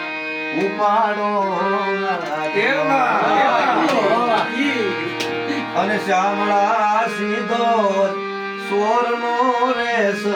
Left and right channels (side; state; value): both; identical; correlation 1.00